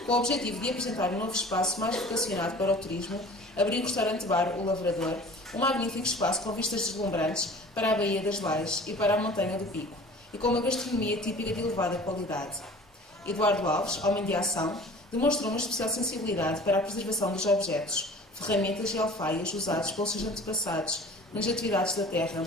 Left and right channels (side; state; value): both; normal; correlation 0.44